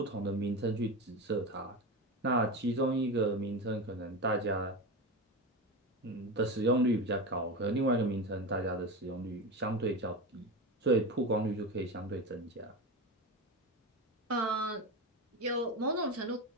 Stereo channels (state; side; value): normal; both; correlation 0.21